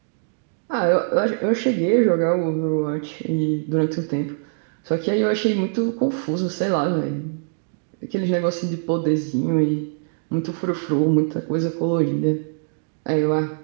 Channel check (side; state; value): left; silent; digital silence